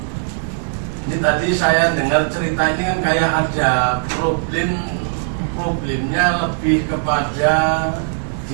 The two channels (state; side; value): silent; left; 67 dB below the other